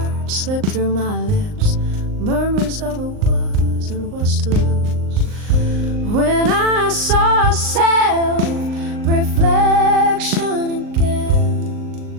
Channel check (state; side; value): late; left; 39 ms